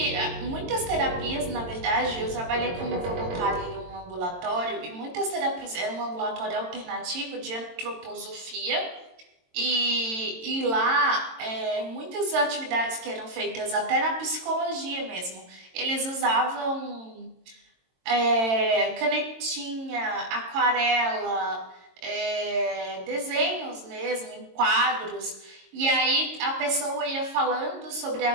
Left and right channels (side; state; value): left; late; 22 ms